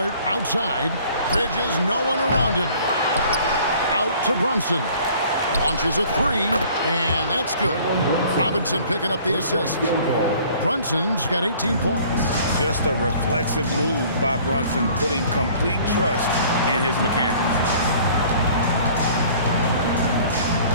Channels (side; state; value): both; inverted; correlation -0.52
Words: outside. Bridges, no one around him. Out to Brunson. Launches a 3, and that's good. Robinson picking up the assist. Brunson's got 18 points. Just a reflexive move by Brunson, putting complete trust in his mechanics.